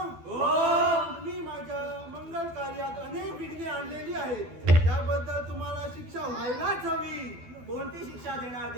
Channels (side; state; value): left; late; 12 ms